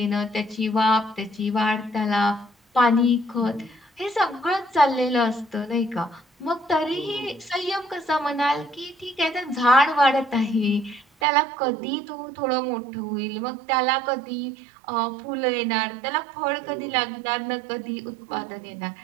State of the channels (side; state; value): left; drops out; at 11.1 s